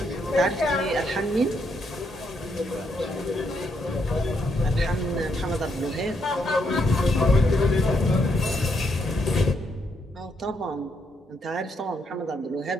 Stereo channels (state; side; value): normal; both; correlation 0.77